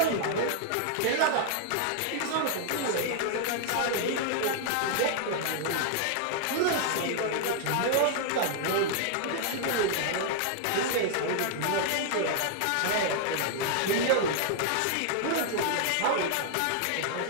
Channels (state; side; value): different; both; correlation 0.00